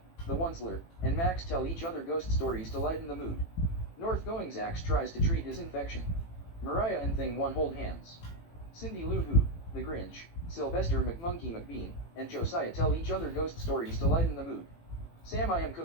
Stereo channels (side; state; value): right; late; 18 ms